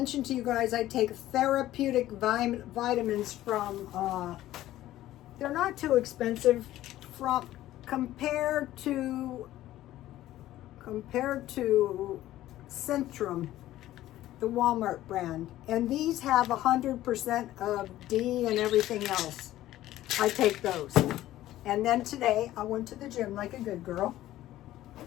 to you guys I take therapeutic vitamins from, they're not too expensive from compared to Centrum, the Walmart brand. And these have 100% of D and everything else. I take those. And then today I went to the gym like a good girl.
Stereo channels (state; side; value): quieter; right; 14.5 dB